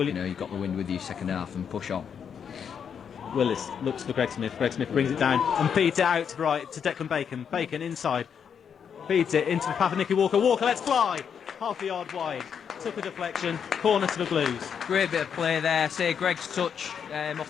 got the wind with you second half and push on. Willis looks for Greg Smith. Greg Smith brings it down and feeds it out to right to Declan Bacon. Bacon inside, feeds it into the path of Nicky Walker. Walker lets fly, half a yard wide. Took a deflection, corner to the Blues. Great bit of play there. Say Greg's touch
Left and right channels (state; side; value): quieter; right; 7.4 dB